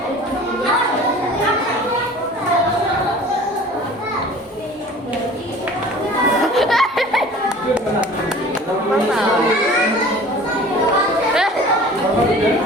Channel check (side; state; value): both; normal; correlation 0.44